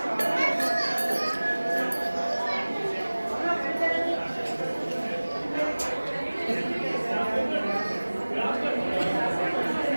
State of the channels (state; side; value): inverted; both; correlation -1.00